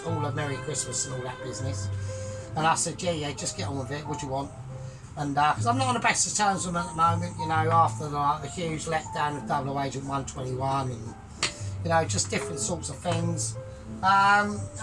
all a Merry Christmas and all that business, and I said, yeah, just get on with it. What do you want? And because I'm not on the best of terms with them at the moment, you know, after the huge letdown of Double Agent 121 and, you know, just different sorts of things. And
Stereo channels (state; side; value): identical; both; correlation 1.00